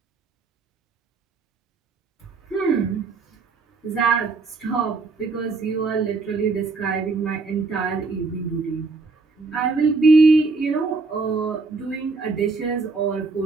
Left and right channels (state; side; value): quieter; left; 4.0 dB